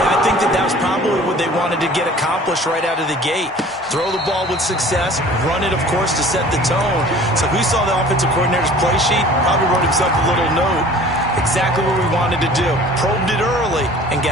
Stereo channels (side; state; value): both; normal; correlation 0.47